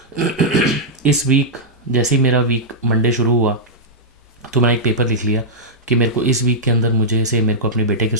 इस वीक, जैसे ही मेरा वीक मंडे शुरू हुआ तो मैंने एक पेपर लिख लिया कि मेरे को इस वीक के अंदर मेरे को अपने बेटे के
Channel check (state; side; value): normal; both; correlation -0.08